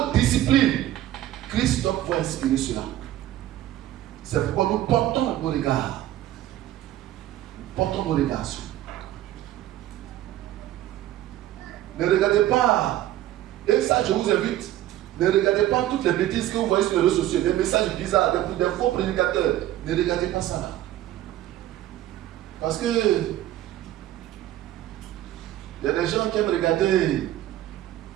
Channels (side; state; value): left; quieter; 13.7 dB